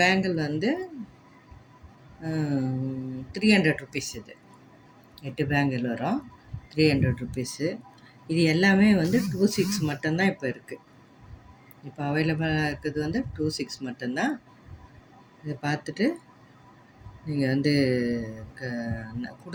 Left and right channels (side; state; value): both; identical; correlation 1.00